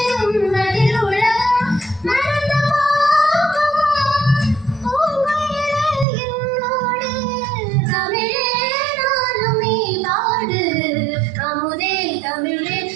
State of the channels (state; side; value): drops out; left; at 6.1 s